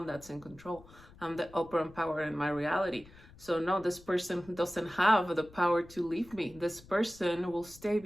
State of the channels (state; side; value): noise; left; rumble, 22 dB below the sound